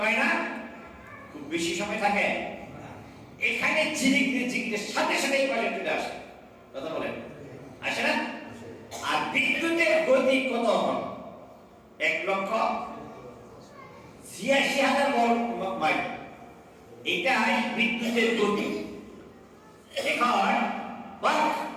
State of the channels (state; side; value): identical; both; correlation 1.00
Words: না, খুব বেশি সময় থাকে, এখানে ঝিরিক সাথে সাথে এই পাশে চলে আসে। কথা বলেন, আসে না? আর বিদ্যুতের গতি কত? 1,86,000 মাইল। এটাই বিদ্যুতের গতি। এখন